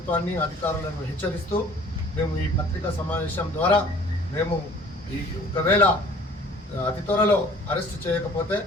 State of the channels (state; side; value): normal; both; correlation 0.51